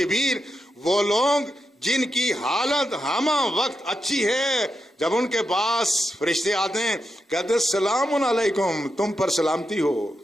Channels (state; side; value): normal; both; correlation 0.86